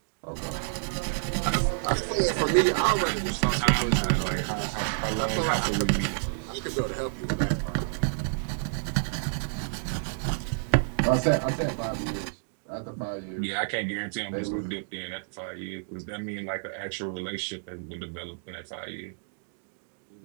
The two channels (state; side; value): silent; left; digital silence